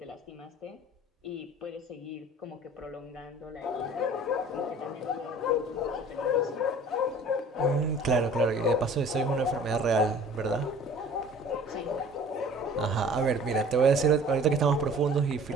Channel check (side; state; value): both; normal; correlation 0.47